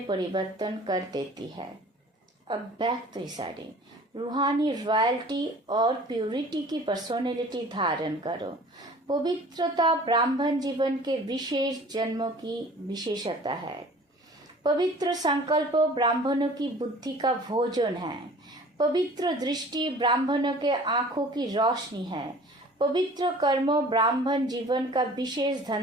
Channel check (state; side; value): normal; both; correlation 0.47